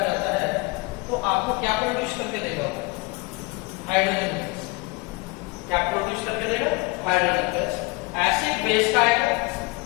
जाता है तो आपको क्या प्रोड्यूस करके देगा? Hydrogen gas. क्या प्रोड्यूस करके देगा? Hydrogen gas. एसिड बेस का आएगा।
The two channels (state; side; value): quieter; right; 25.9 dB